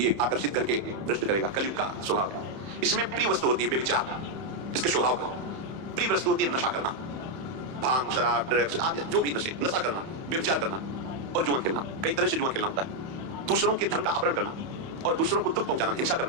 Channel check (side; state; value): left; late; 31 ms